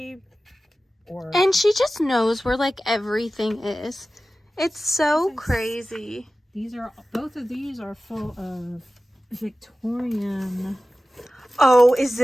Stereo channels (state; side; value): normal; both; correlation 0.95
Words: or... And she just knows where like everything is. It's so crazy. Both of these are full of Victorian. Oh, is